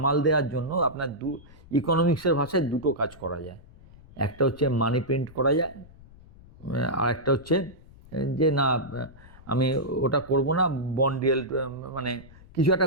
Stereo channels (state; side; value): noise; left; rumble, 22 dB below the sound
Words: দেওয়ার জন্য আপনার ইকোনমিক্সের ভাষায় দুটো কাজ করা যায়। একটা হচ্ছে মানি প্রিন্ট করা যায়, আর একটা হচ্ছে যে না আমি ওটা করব না, বন্ড ইয়েল্ড, মানে কিছু